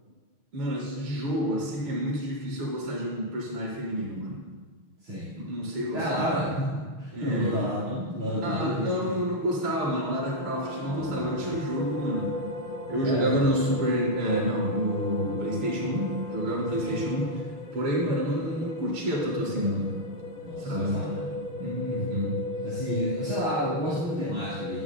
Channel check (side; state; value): left; late; 6.4 ms